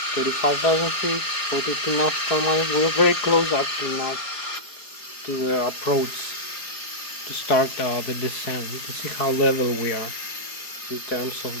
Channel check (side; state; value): right; late; 4.8 ms